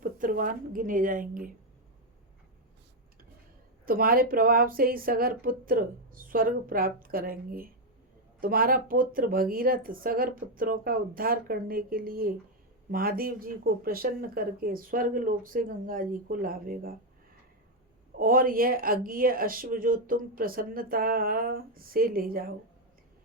पुत्रवान गिने जाएंगे। तुम्हारे प्रभाव से ही सगर पुत्र स्वर्ग प्राप्त करेंगे। तुम्हारा पुत्र भगीरथ सगर पुत्रों का उद्धार करने के लिए महादेव जी को प्रसन्न करके स्वर्ग लोक से गंगा जी को लावेगा। और यह अज्ञेय अश्व जो तुम प्रसन्नता से ले जाओ।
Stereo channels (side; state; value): both; normal; correlation 0.03